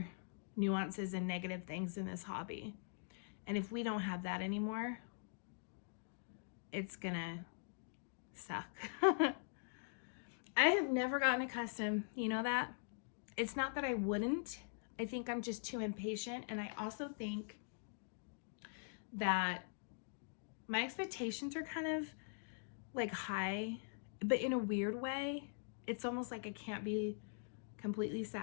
nuances and negative things in this hobby. And if we don't have that anymore, it's gonna suck. I have never gotten accustomed, you know that? It's not that I wouldn't. I think I'm just too impatient, and I also think that my expectations are kind of like high, but in a weird way. It's almost like I can't be completely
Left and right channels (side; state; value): right; silent; digital silence